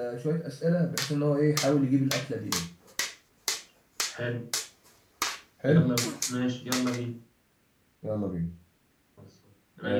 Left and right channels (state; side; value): identical; both; correlation 1.00